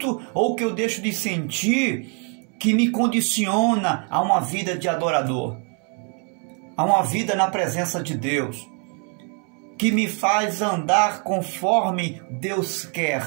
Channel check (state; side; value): quieter; left; 38.8 dB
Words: ou o que eu deixo de sentir que me condiciona a uma vida de adorador, a uma vida na presença de Deus, que me faz andar conforme Deus quer.